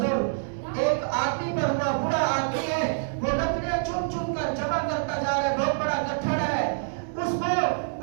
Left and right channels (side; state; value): left; silent; digital silence